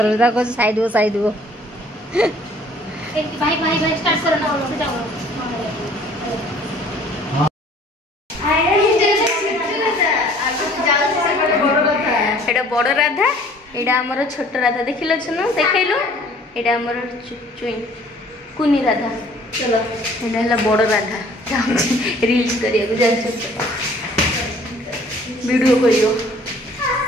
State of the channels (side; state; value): both; normal; correlation 0.54